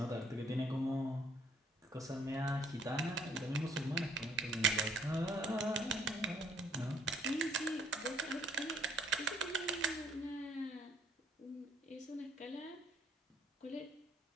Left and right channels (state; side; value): normal; both; correlation 0.64